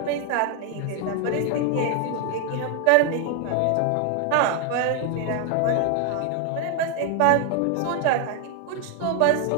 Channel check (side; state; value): both; different; correlation 0.01